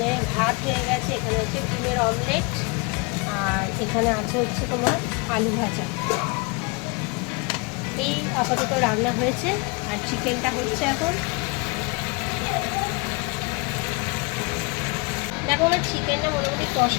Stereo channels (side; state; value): right; quieter; 28.8 dB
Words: ভাত হয়ে গেছে, এখানে হচ্ছে ডিমের অমলেট, আর এখানে আছে হচ্ছে তোমার আলু ভাজা। এই আপাতত রান্না হয়েছে, আর চিকেনটা হচ্ছে এখন। দেখো আমার চিকেনটা মোটামুটি